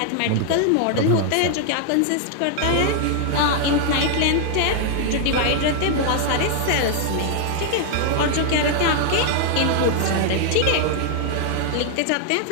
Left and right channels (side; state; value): both; different; correlation 0.00